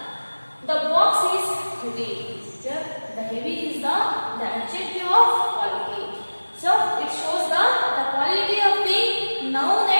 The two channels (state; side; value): inverted; both; correlation -1.00